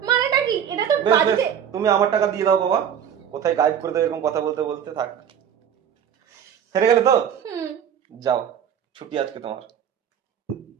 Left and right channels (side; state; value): left; quieter; 8.8 dB